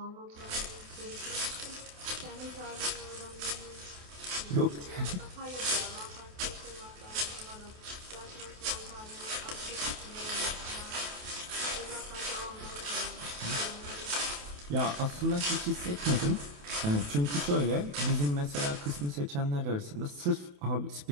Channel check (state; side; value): late; left; 28 ms